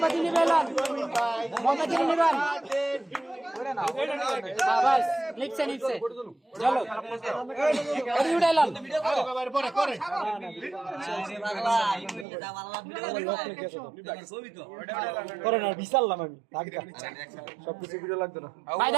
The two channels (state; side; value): drops out; left; at 12.2 s